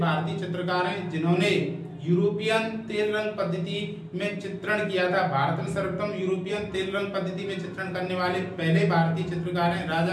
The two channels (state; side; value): identical; both; correlation 1.00